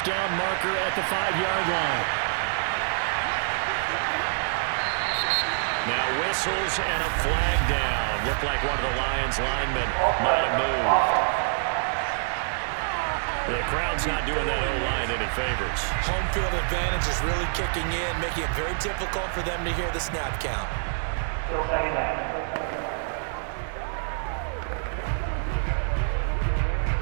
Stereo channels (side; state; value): left; silent; digital silence